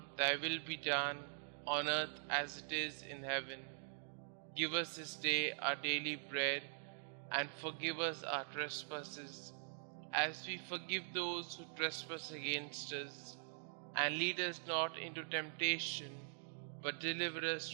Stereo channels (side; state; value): left; silent; digital silence